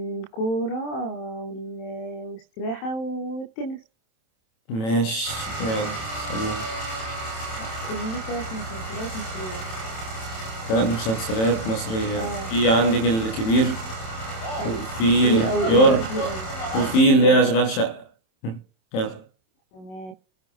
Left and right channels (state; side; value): late; right; 27 ms